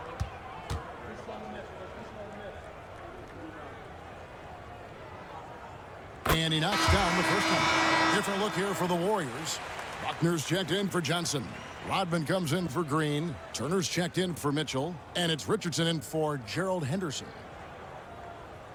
And he knocks down the first one. Different look here for the Warriors. Buckner's checked in for Johnson. Rodman comes in for Green. Turner's checked in for Mitchell. And it's Richardson in for Gerald Henderson.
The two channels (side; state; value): both; identical; correlation 1.00